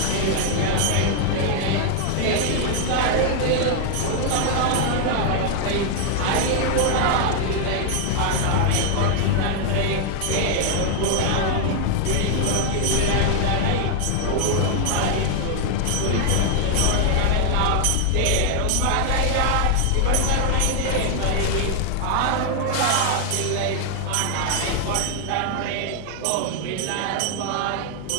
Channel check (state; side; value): different; both; correlation 0.00